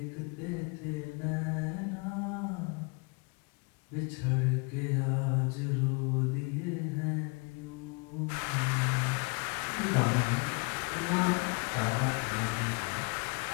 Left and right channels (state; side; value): quieter; right; 31.6 dB